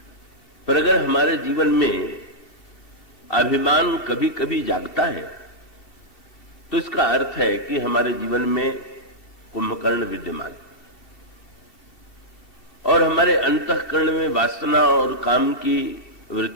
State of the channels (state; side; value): late; right; 2.7 ms